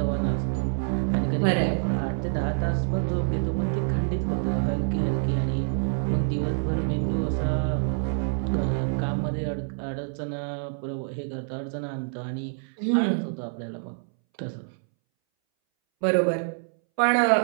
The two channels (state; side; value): silent; left; 61 dB below the other